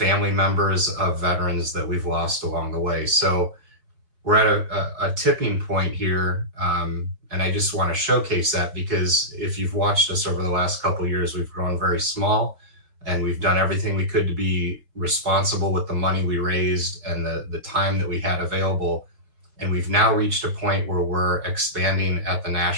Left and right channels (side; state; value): left; late; 4.5 ms